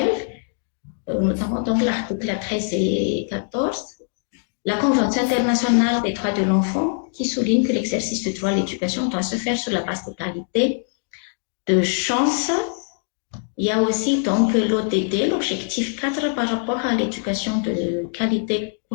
notamment donc l'article 13 et 14, la Convention internationale des droits de l'enfant qui souligne que l'exercice du droit à l'éducation doit se faire sur la base d'égalité de chance. Il y a aussi donc l'ODD, l'objectif 4 par rapport à l'éducation de qualité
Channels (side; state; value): right; silent; 63 dB below the other